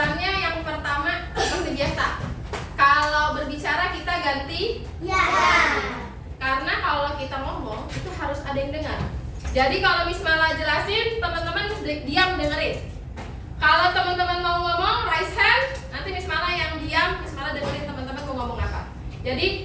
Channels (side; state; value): both; identical; correlation 1.00